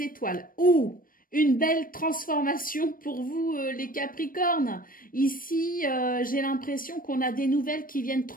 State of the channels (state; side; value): late; right; 0.41 ms